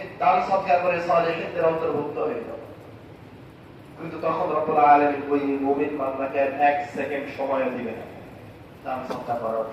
দান সদকা করে সালেহিনদের অন্তর্ভুক্ত হয়ে যাব। কিন্তু তখন রব্বুল আলামিন ওই মুমিন বান্দাকে এক সেকেন্ড সময় দিবেন না দান সদকা করার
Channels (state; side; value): identical; both; correlation 1.00